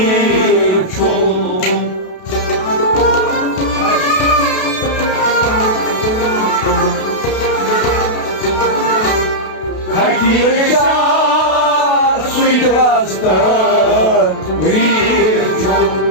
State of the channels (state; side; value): late; right; 32 ms